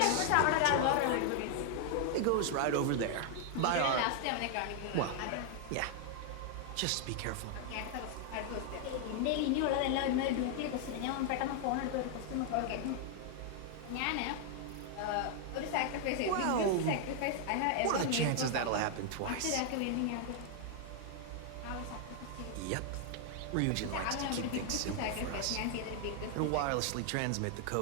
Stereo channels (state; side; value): different; both; correlation 0.00